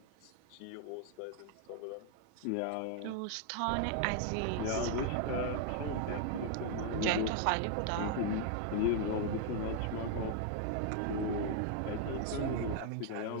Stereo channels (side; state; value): both; different; correlation 0.00